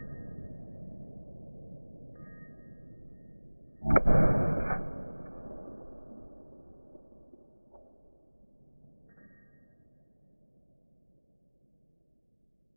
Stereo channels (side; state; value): both; inverted; correlation -1.00